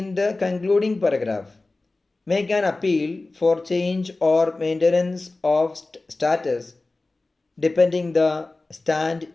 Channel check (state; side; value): quieter; right; 3.2 dB